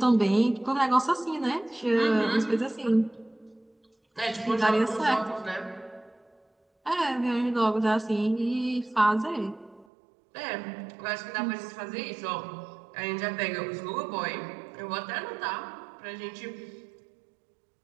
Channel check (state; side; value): drops out; left; at 9.9 s